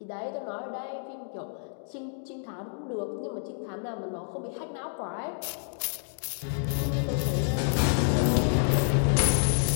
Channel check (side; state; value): right; silent; digital silence